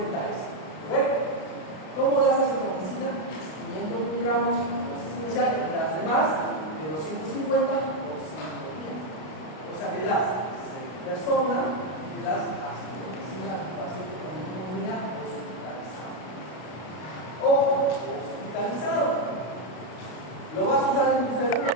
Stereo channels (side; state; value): right; late; 32 ms